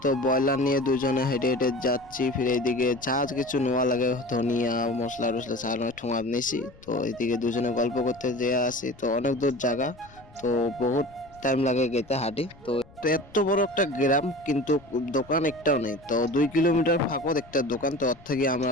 তো ব্রয়লার নিয়ে দুজনে হেঁটে হেঁটে যাচ্ছি। ফিরে এইদিকে যা কিছু নেওয়া লাগে, ধনিয়া মশলা টসলা ছাড়ানো ঠোঙা নিয়েছি। তো এইদিকে দুজনে গল্প করতে যেয়ে আসি। তো অনেক দূর জায়গা, তো বহুত টাইম লাগে যেতে হাঁটি। তো তো এত বড় একটা গ্রাম, কিন্তু দোকান একটাও নেই। তো 2 কিলোমিটার ফাঁকত একটা দোকান, তো ওর থেকে আমরা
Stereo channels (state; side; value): noise; left; rumble, 24 dB below the sound